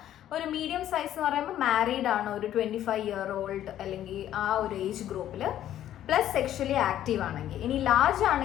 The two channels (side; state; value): right; quieter; 11.8 dB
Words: ഒരു മീഡിയം സൈസ് എന്ന് പറയുമ്പോൾ മാരീഡ് ആണ്, ഒരു 25 year old അല്ലെങ്കിൽ ആ ഒരു ഏജ് ഗ്രൂപ്പിൽ, പ്ലസ് സെക്ഷലി ആക്റ്റീവ് ആണെങ്കിൽ. ഇനി ലാർജ്